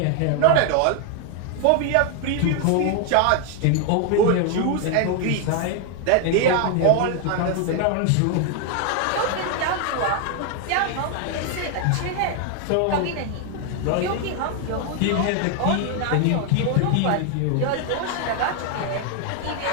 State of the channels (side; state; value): both; different; correlation 0.00